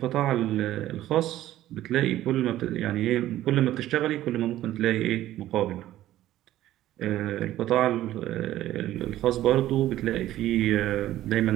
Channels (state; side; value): quieter; left; 13.9 dB